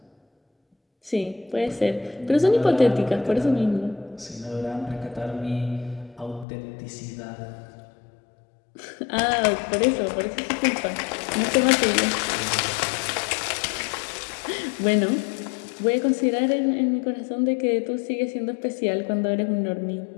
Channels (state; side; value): drops out; right; at 6.5 s